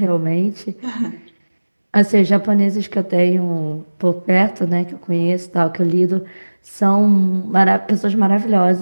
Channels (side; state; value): both; inverted; correlation -1.00